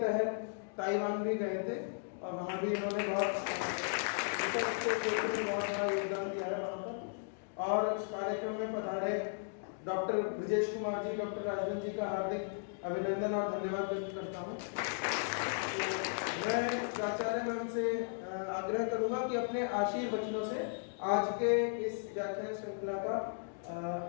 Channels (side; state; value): right; silent; digital silence